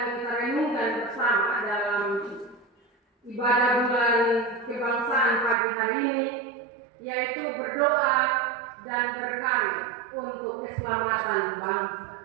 kita renungkan bersama dalam ibadah bulan kebangsaan pagi hari ini yaitu berdoa dan berkarya untuk keselamatan bangsa.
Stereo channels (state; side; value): drops out; left; at 5.6 s